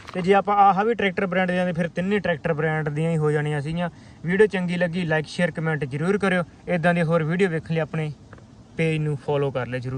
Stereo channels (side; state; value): both; identical; correlation 1.00